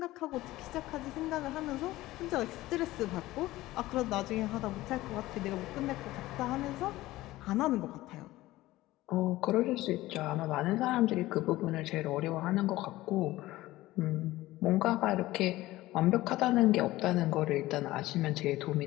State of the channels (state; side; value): quieter; right; 17.3 dB